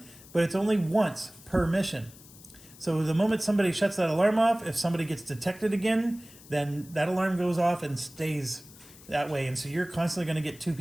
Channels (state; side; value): noise; left; hiss, 21 dB below the sound